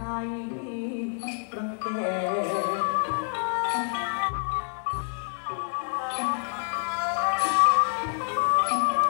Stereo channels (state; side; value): silent; right; digital silence